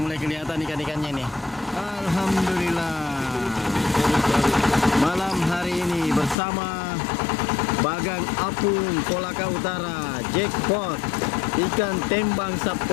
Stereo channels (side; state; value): right; drops out; at 6.4 s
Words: kelihatan ikan-ikannya nih. Alhamdulillah. Malam hari ini bersama Bagang Apung Kolaka Utara, jackpot ikan tembang